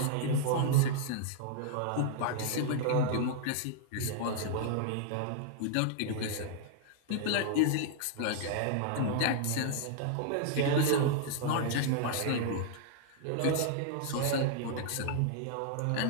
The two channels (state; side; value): different; both; correlation -0.01